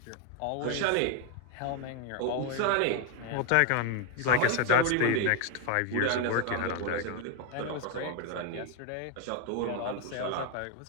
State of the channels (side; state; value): both; different; correlation 0.01